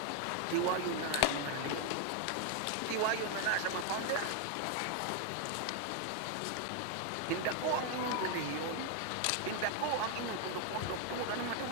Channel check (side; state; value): both; different; correlation 0.00